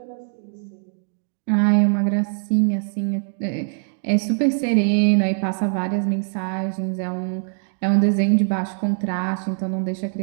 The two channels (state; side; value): silent; left; digital silence